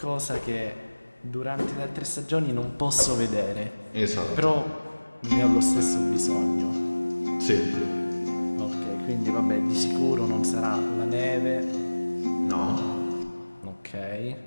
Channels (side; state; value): both; inverted; correlation -1.00